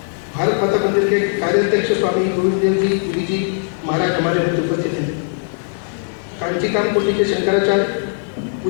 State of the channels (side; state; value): right; silent; 58 dB below the other